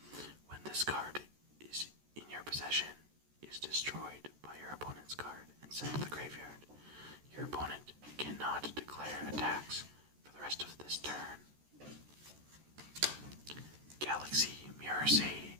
When this card is in your possession, is destroyed by your opponent's card and sent to the graveyard. Your opponent cannot declare attacks for the rest of this turn. Galaxy Mirror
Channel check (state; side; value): late; left; 14 ms